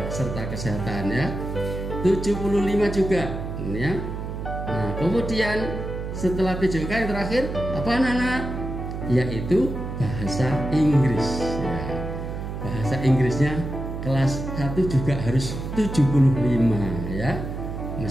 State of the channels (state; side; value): noise; right; hum, 6 dB below the sound